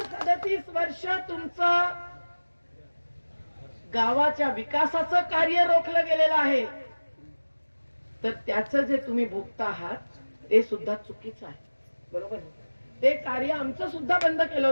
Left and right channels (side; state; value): both; inverted; correlation -1.00